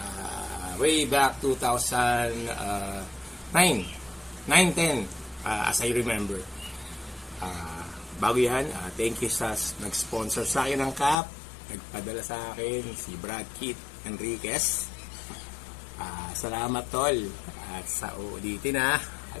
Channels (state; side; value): drops out; right; at 11.2 s